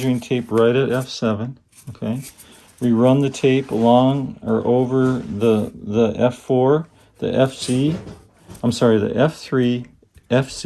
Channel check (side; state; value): both; identical; correlation 1.00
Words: tape right at F7. Okay, we run the tape along or over the F4, the FC. I'm sorry, the F3,